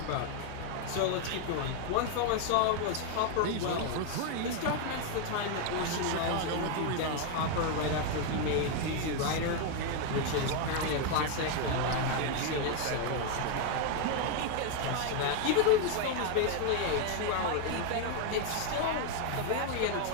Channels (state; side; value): different; both; correlation 0.01